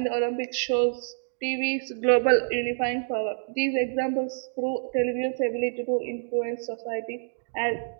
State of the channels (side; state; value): left; silent; digital silence